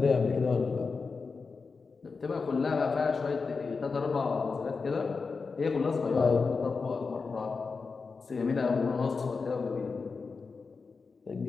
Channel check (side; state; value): right; quieter; 4.7 dB